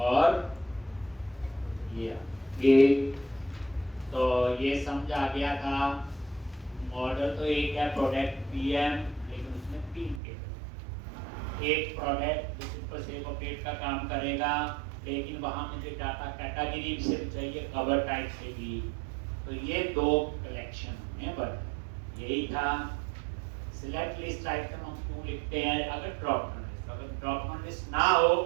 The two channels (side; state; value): left; drops out; at 10.2 s